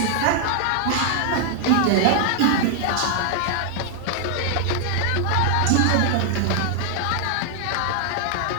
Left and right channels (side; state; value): both; different; correlation 0.00